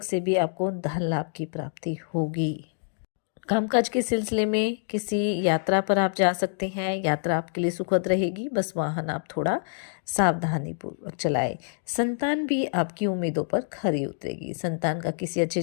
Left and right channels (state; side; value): silent; right; digital silence